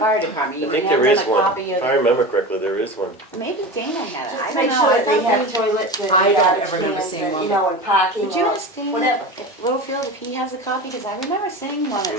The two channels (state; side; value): normal; both; correlation 0.28